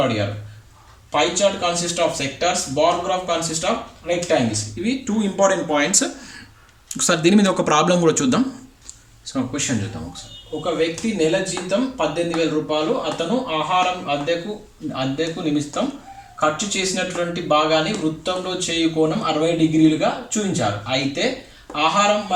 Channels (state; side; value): identical; both; correlation 1.00